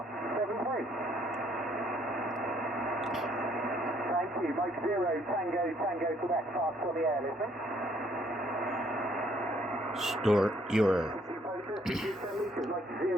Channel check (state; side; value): normal; both; correlation 0.65